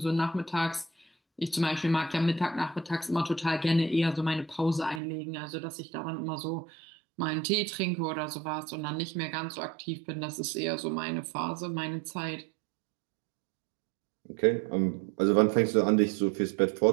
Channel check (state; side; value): drops out; left; at 5.0 s